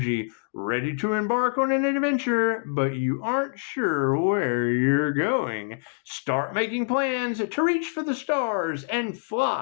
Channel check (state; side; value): silent; right; digital silence